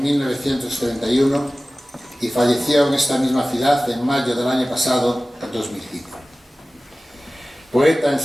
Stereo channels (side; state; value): both; normal; correlation 0.97